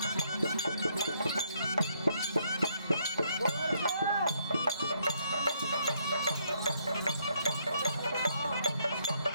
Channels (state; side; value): inverted; both; correlation -0.71